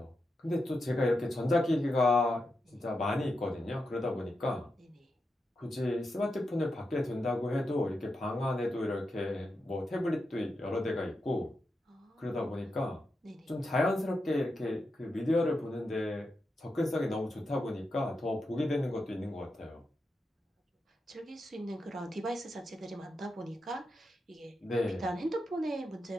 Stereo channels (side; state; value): both; normal; correlation 0.87